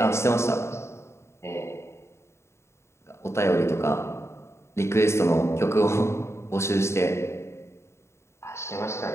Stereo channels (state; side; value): late; right; 0.13 ms